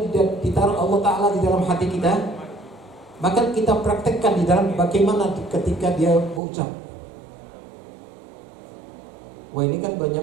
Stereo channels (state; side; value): drops out; left; at 6.4 s